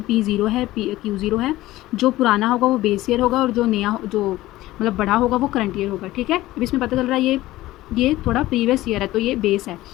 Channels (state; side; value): quieter; right; 16.7 dB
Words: P0 है, Q0 है। जो पुराना होगा वो बेस ईयर होगा और जो नया, जो मतलब बड़ा होगा वो करंट ईयर होगा, ठीक है। अब इसमें पता चल रहा है ये थोड़ा प्रीवियस ईयर है तो ये बेस है